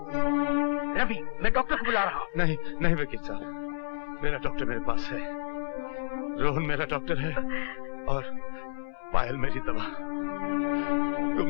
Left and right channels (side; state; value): right; silent; 58 dB below the other